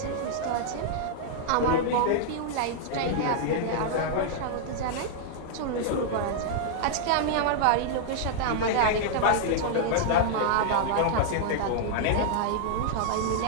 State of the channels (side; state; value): both; different; correlation -0.01